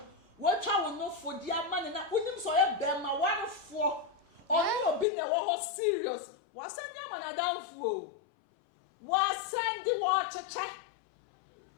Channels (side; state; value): right; drops out; at 5.1 s